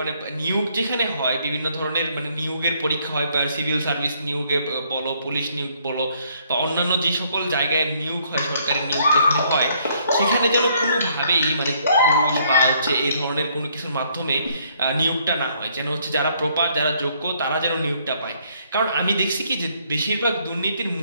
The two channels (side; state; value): both; inverted; correlation -0.67